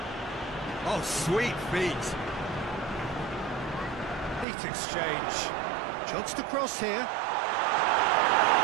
Oh, sweet feet. Neat exchange. Chance to cross here.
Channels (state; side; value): drops out; left; at 4.5 s